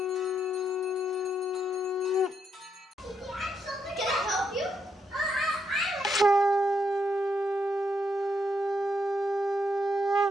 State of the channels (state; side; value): normal; both; correlation 0.79